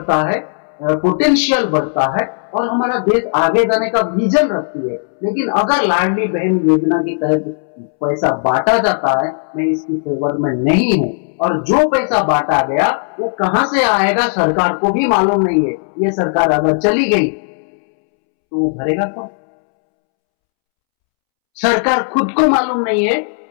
है, पोटेंशियल बढ़ता है, और हमारा देश आगे जाने का विजन रखती है। लेकिन अगर लाडली बहन योजना के तहत पैसा बांटा जाता है, मैं इसकी फेवर में नहीं हूं। और जो पैसा बांटा गया वो कहां से आएगा सरकार को भी मालूम नहीं है। ये सरकार अगर चली गई तो वो भरेगा कौन? सरकार खुद को मालूम नहीं है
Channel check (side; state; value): right; silent; 69 dB below the other